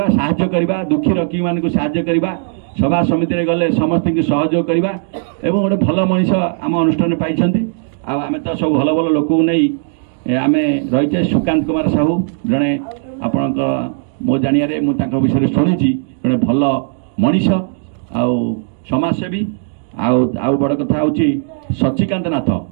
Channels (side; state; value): left; silent; digital silence